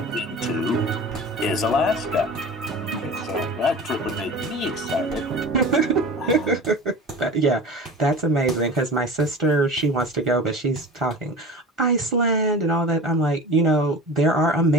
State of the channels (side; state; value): both; normal; correlation 0.35